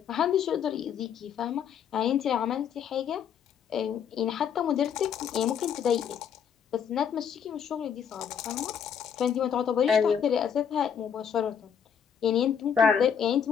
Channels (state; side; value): quieter; right; 7.8 dB